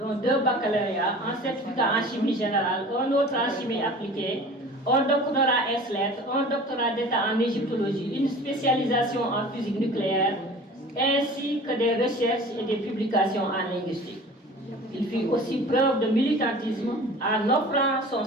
2 baccalauréats, un certificat en chimie générale, un autre en chimie appliquée, un doctorat S-lettres, un doctorat d'état en égyptologie, une spécialisation en physique nucléaire, ainsi que des recherches et des publications en linguistique. Il fit aussi preuve de militantisme en offrant son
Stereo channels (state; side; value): normal; both; correlation 0.42